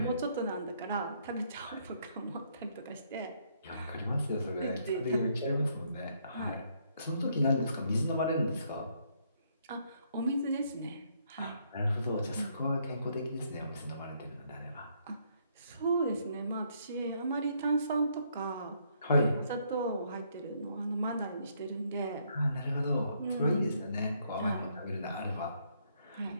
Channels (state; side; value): inverted; both; correlation -0.70